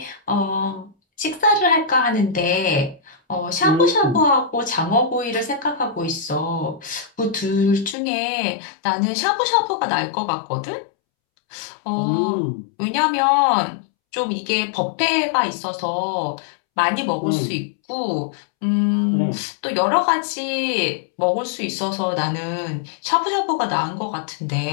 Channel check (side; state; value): right; drops out; at 8.0 s